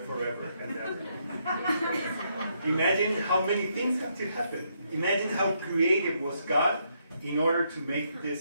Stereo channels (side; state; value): both; inverted; correlation -0.76